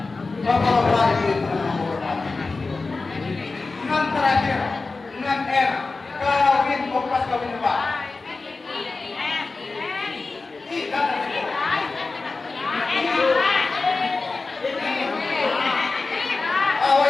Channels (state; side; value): quieter; right; 3.8 dB